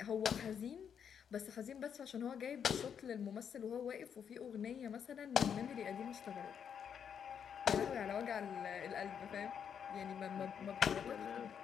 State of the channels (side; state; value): right; quieter; 7.8 dB